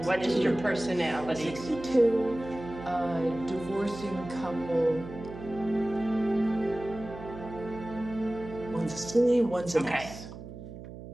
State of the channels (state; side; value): noise; right; hum, 13 dB below the sound